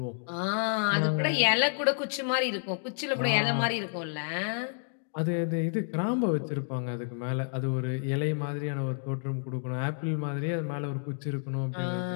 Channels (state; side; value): silent; right; digital silence